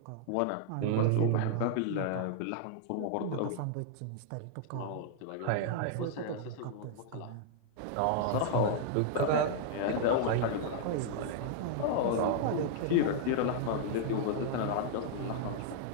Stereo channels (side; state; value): both; different; correlation -0.01